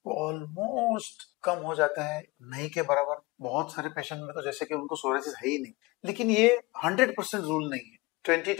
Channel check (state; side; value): quieter; right; 22.8 dB